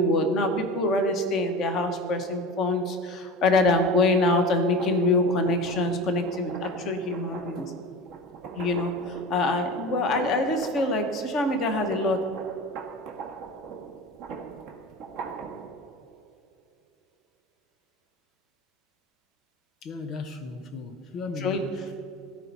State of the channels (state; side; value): normal; both; correlation 0.31